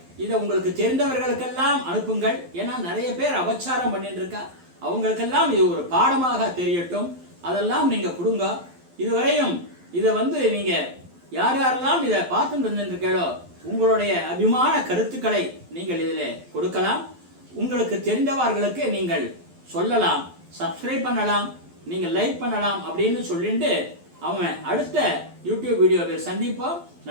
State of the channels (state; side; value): late; left; 12 ms